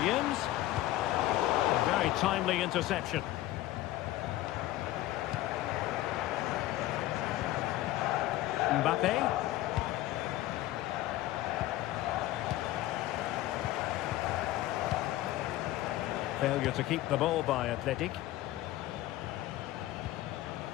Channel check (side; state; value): right; quieter; 15.5 dB